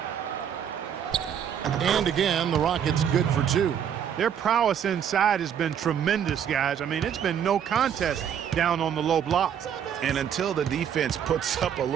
And again, the Rockets good for two. Their prowess inside has been tremendous, guys. I mean, it's been no contest down on the low block. And until the defense puts up a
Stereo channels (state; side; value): quieter; left; 8.7 dB